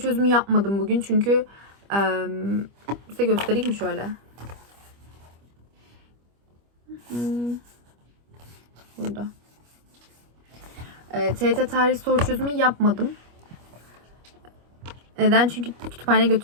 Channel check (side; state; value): left; late; 25 ms